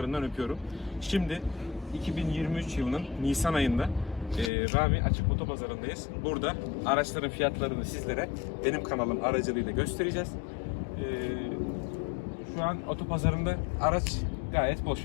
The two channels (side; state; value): right; drops out; at 4.5 s